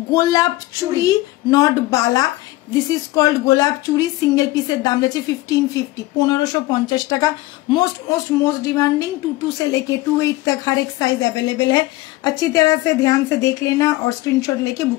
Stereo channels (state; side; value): quieter; right; 18.5 dB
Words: গোলাপ চুড়ি, not Bala. This is called गोलाप चूड़ी। सिंगल पीसर दाम रहे 1550, 1550 টাকা। मोस्ट डिमांडिंग 22 से लेके 28 तक हर एक साइज अवेलेबल है। अच्छी तरह से ध्यान से देख लेना और स्क्रीनशॉट लेके